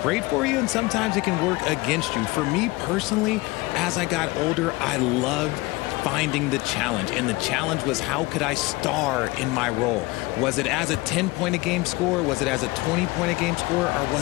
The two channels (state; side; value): quieter; right; 22.3 dB